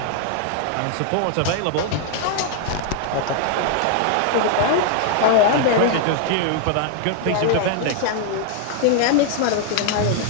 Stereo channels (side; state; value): both; different; correlation 0.00